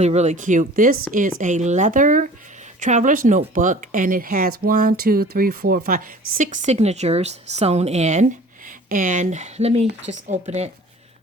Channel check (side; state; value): both; normal; correlation 0.46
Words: really cute. This is a leather traveler's notebook, and it has 6 signatures sewn in. And let me just open it.